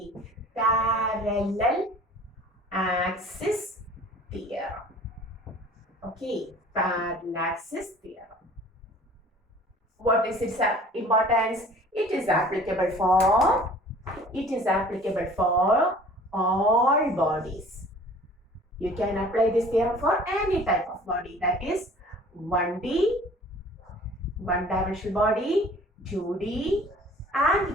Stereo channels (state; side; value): normal; both; correlation 0.49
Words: parallel axis theorem. Okay, Parallaxis theorem. What is its importance? It is applicable for all bodies. You can apply this theorem for any type of body, that is 1D, one-dimensional body, 2D